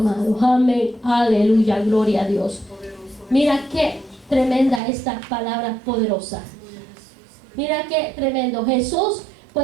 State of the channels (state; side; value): drops out; left; at 4.8 s